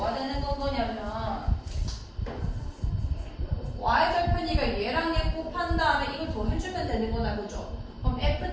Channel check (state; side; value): identical; both; correlation 1.00